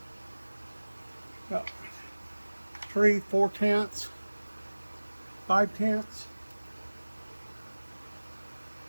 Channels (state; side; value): inverted; both; correlation -1.00